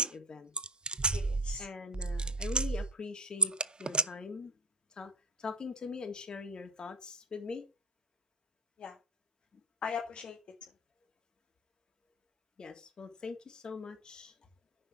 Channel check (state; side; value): normal; both; correlation 0.22